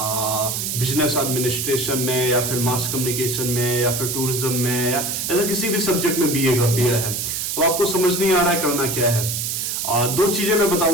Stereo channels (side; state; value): right; noise; hiss, 2 dB below the sound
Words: बिजनेस एडमिनिस्ट्रेशन में, या फिर मास कम्युनिकेशन में, या फिर टूरिज्म में, या ऐसा किसी भी सब्जेक्ट में बीए कर लिया है। अब आपको समझ नहीं आ रहा है करना क्या है। दो चीजें मैं